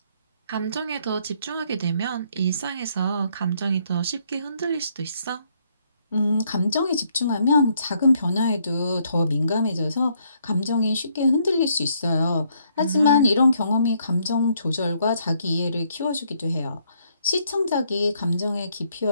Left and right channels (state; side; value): inverted; both; correlation -0.70